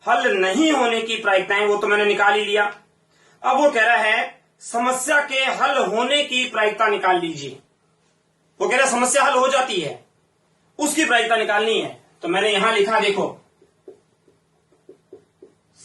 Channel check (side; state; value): both; identical; correlation 1.00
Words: हल नहीं होने की प्रायिकताएं वो तो मैंने निकाल ही लिया। अब वो कह रहा है समस्या के हल होने की प्रायिकता निकाल लीजिए। वो कह रहा है समस्या हल हो जाती है, उसकी प्रायिकता निकालनी है। तो मैंने यहां लिखा, देखो,